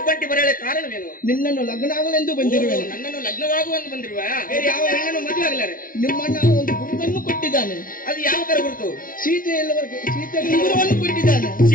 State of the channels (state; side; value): late; right; 0.40 ms